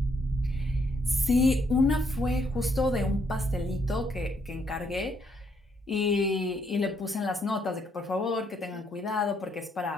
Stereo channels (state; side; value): normal; both; correlation 0.72